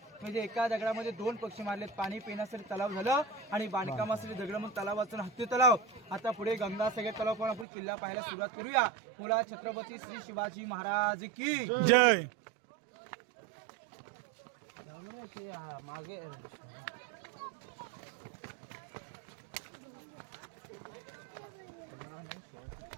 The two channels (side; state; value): left; drops out; at 7.7 s